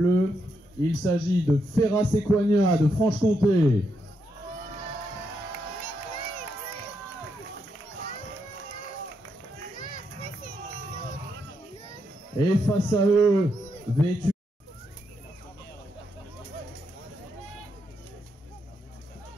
Il s'agit de Ferrat Séquania de Franche-Comté. Et face à eux, vêtus.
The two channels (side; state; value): both; normal; correlation 0.80